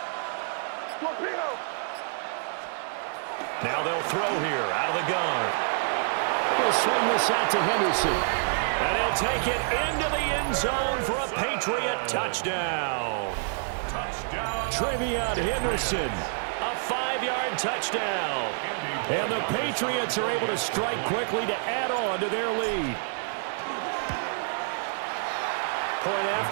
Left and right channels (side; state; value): left; silent; digital silence